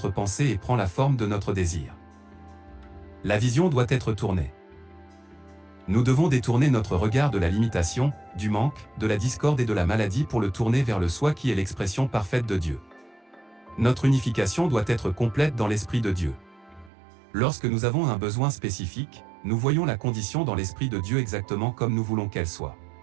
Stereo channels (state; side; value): drops out; left; at 16.9 s